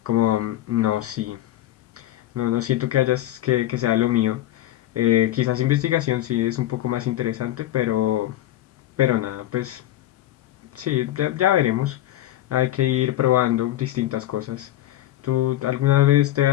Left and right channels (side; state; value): right; quieter; 14.0 dB